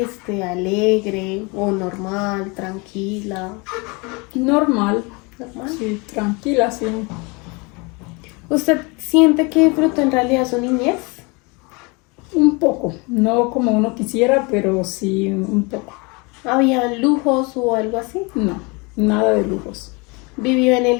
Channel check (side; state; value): right; quieter; 28.6 dB